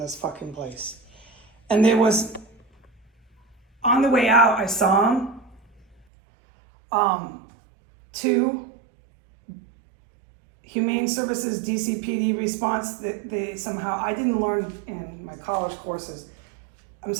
fucking place. And there was, on the way out, I saw him. Two Humane Services DCPD response that they somehow, I didn't learn in my college courses. I'm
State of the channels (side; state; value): left; drops out; at 6.1 s